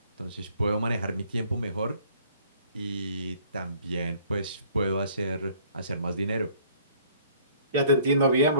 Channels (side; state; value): both; inverted; correlation -0.58